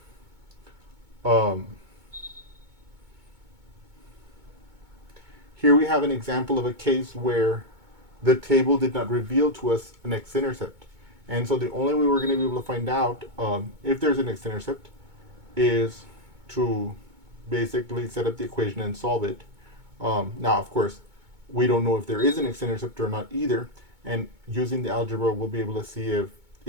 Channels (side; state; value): left; late; 2.2 ms